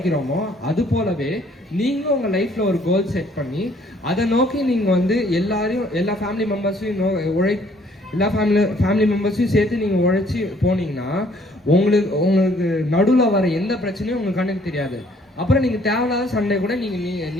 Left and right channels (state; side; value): normal; both; correlation 0.61